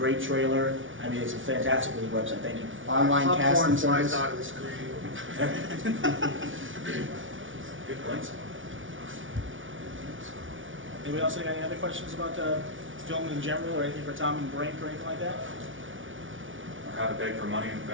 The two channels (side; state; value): left; late; 0.57 ms